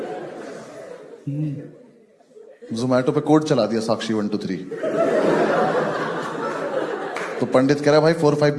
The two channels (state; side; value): identical; both; correlation 1.00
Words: जोमैटो पे कोड चला दिया साक्षी 1 2 3। तो पंडित कह रहा है भाई 4 5